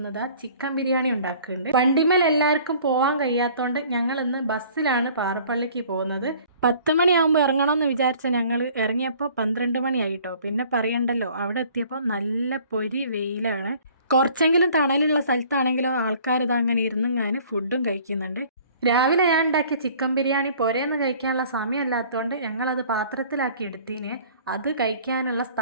ചിക്കൻ ബിരിയാണി ഉണ്ടാക്കുന്നുണ്ട്. വണ്ടിമേൽ എല്ലാവർക്കും പോകാൻ കഴിയാത്തതുകൊണ്ട് ഞങ്ങളിന്ന് ബസ്സിലാണ് പാറപ്പള്ളിക്ക് പോകുന്നത്. 10 മണിയാകുമ്പോൾ ഇറങ്ങണമെന്ന് വിചാരിച്ച ഞങ്ങൾ ഇറങ്ങിയപ്പോൾ 12 മണിയായിട്ടോ. പിന്നെ പറയണ്ടല്ലോ, അവിടെ എത്തിയപ്പോൾ നല്ല പൊരി വെയിലാണ്. കുറച്ചെങ്കിലും തണലുള്ള സ്ഥലത്താണെങ്കിലോ ആൾക്കാർ ഇത് അങ്ങനെ ഇരുന്നിങ്ങാന് ഫുഡും കഴിക്കുന്നുണ്ട്. രാവിലെ ഞാൻ ഉണ്ടാക്കിയ ചിക്കൻ ബിരിയാണി പുരേന്ന് കഴിക്കാനുള്ള സമയമല്ലാത്തതുകൊണ്ട് ഞങ്ങളത് പാത്രത്തിലാക്കി എടുത്തീന്. അത് കഴിക്കാനുള്ള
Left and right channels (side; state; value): both; inverted; correlation -0.52